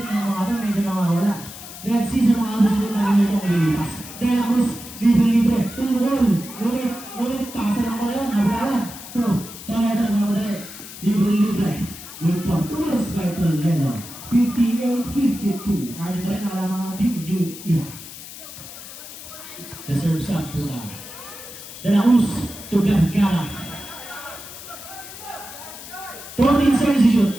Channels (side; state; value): left; noise; hiss, 14 dB below the sound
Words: ng mga ito. Medyo nawawala. Let's see sa mga susunod na ganitong lilipas. De La Cruz, libre. Tumulong. Ngunit. Pasa lang ko yun. Nabulawan. 2, Toledo na muli. Libre. Good for 2 points by Toledo. 58-52. Ano ba rin ang mga Team New Era? Reserve shot po na. De La Cruz to Vergara. 14 seconds to shoot.